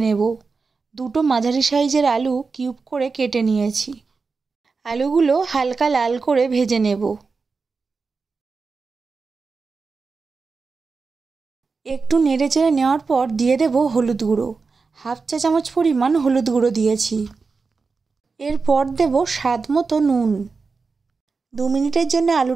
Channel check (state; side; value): quieter; left; 4.5 dB